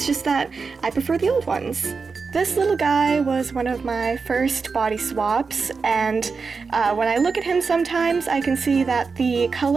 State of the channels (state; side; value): quieter; left; 4.8 dB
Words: just that I prefer the old ones. This little guy was one of my first body swaps, and when I look at him sometimes I can see that the